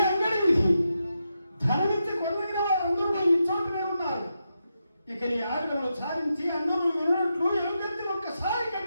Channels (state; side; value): inverted; both; correlation -0.86